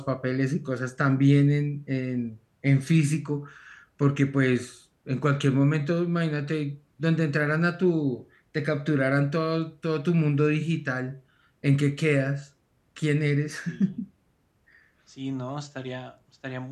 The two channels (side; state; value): both; identical; correlation 1.00